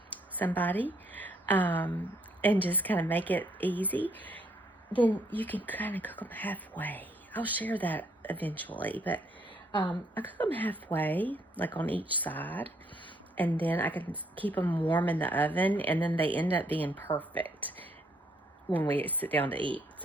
somebody, and just kind of make it easy, then you can kind of cook them halfway. I'll share that eventually, but I cook them halfway, like on each side, and then I can keep them warm in the oven, and then they end up being perfect when we sit down to eat.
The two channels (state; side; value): normal; both; correlation 0.69